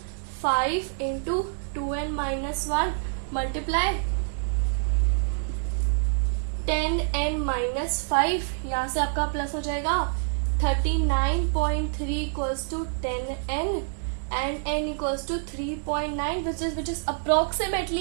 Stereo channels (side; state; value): left; silent; digital silence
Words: 5 into 2n minus 1 multiply 10n minus 5. यहां से आपका प्लस हो जाएगा. 39.3 equals to 10n and n equals to 3.9 which is